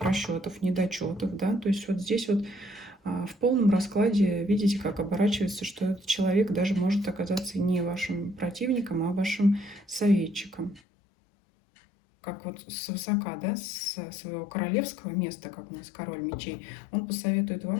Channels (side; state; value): right; drops out; at 10.8 s